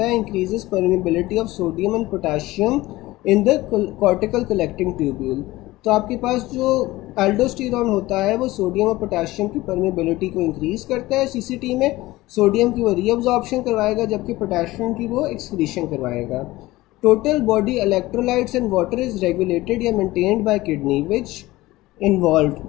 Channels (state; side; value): quieter; right; 18.5 dB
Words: है? Increases permeability of sodium and potassium in the cortical collecting tubule. तो आपके पास जो एल्डोस्टेरोन होता है वो सोडियम और पोटेशियम की परमिबिलिटी को इंक्रीज करता है सीसीटी में। सोडियम की वो रीअब्जॉर्प्शन करवाएगा, जबकि पोटेशियम की वो एक्सक्रीशन करवाएगा। Total body electrolytes and water is regulated या maintained by kidney which involve.